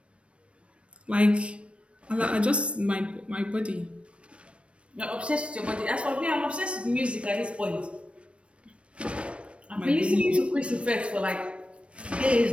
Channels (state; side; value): late; left; 0.060 ms